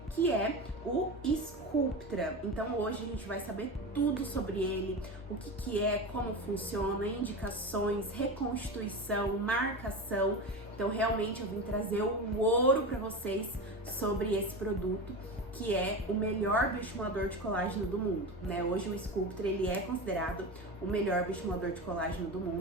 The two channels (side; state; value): both; normal; correlation 0.24